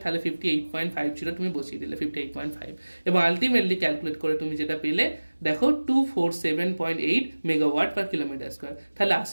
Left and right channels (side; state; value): both; inverted; correlation -1.00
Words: তাহলে 58.50 তুমি বসিয়ে দিলে 58.5, এবং আলটিমেটলি ক্যালকুলেট করে তুমি যেটা পেলে দেখো 247.8 মেগাওয়াট পার কিলোমিটার স্কোয়ার। তাহলে